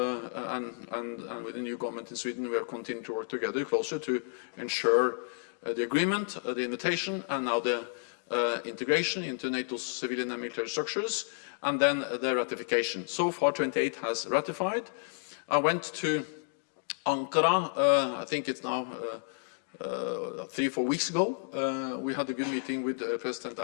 and with the new government in Sweden. We have continued to work together closer to ensure the agreement, the invitation, and now the integration into NATO's civilian and military structures, and then the ratification. So far, 28 has ratified. I went to Ankara, I think it's now 3-4 weeks ago. We had a good meeting with President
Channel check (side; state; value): right; silent; 57 dB below the other